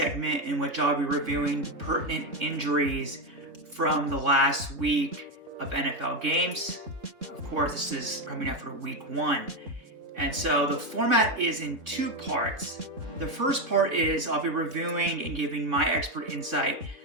in which I'll be reviewing pertinent injuries from the last week of NFL games. Of course, this is coming after week 1. And so the format is in 2 parts. The first part is I'll be reviewing and giving my expert insight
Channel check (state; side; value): late; left; 3.7 ms